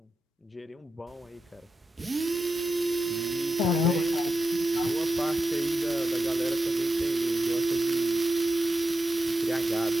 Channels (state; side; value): normal; both; correlation 0.89